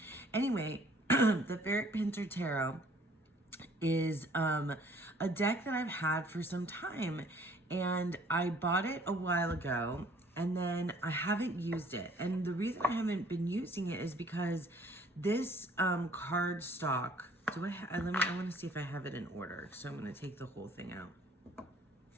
Anyway, the Ferric Pinter Tarot is a deck that I've had for some time, and I bought it a while ago, and then I haven't used it. And the reason I haven't been using it is because this card stock, I want to see if I have it in order. So I'm going to take the whole thing out.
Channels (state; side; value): normal; both; correlation 0.57